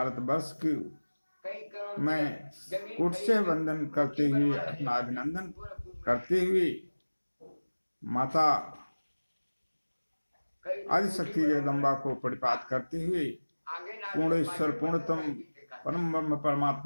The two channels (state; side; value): inverted; both; correlation -1.00